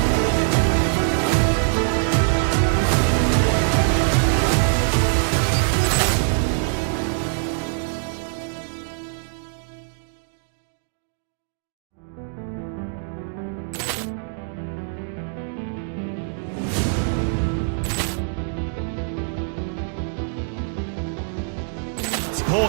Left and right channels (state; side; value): silent; left; 63 dB below the other